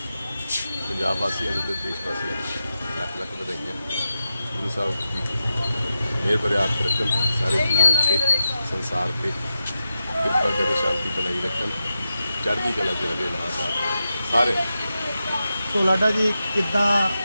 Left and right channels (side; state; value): both; inverted; correlation -0.90